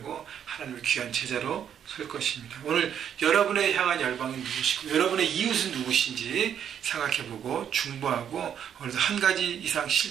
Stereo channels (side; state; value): left; quieter; 8.9 dB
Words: 하나님의 귀한 제자로 설 것입니다. 오늘 여러분의 향한 열방은 누구시고 여러분의 이웃은 누구신지 생각해보고 중보하고 오늘도 한 가지 이상